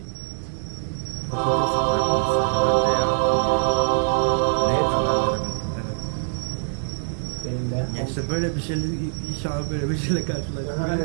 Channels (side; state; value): left; silent; digital silence